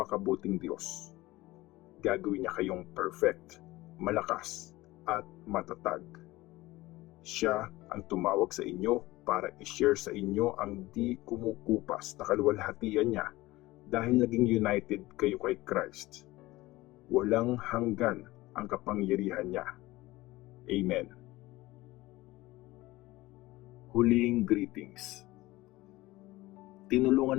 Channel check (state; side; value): quieter; right; 18.9 dB